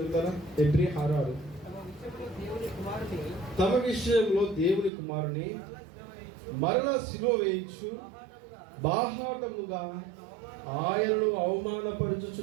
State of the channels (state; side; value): drops out; left; at 4.9 s